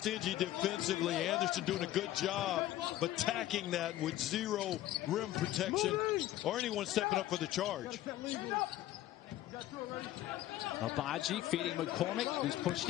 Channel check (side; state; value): right; quieter; 14.3 dB